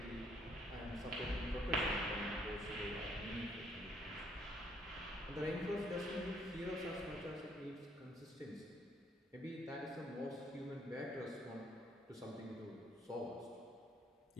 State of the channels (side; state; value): both; normal; correlation 0.67